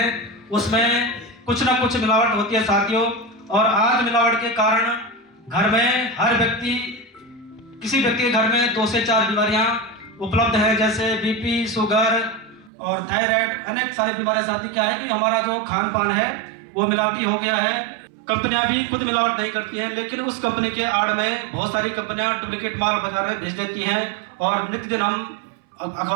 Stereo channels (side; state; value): left; drops out; at 12.7 s